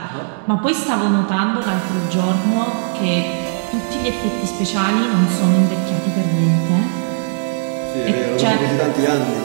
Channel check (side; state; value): left; silent; digital silence